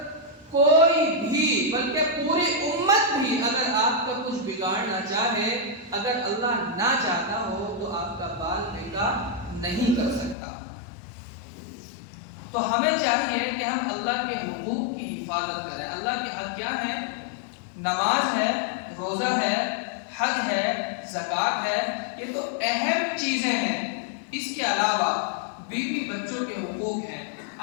کوئی بھی بلکہ پوری امت بھی اگر آپ کا کچھ بگاڑنا چاہے، اگر اللہ نہ چاہتا ہو تو آپ کا بال بیکا نہیں کر سکتا۔ تو ہمیں چاہیے کہ ہم اللہ کے حقوق کی حفاظت کریں۔ اللہ کے حق کیا ہیں؟ نماز ہے، روزہ ہے، حج ہے، زکوٰۃ ہے، یہ تو اہم چیزیں ہیں۔ اس کے علاوہ بیوی بچوں کے حقوق ہیں،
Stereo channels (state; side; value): drops out; right; at 10.4 s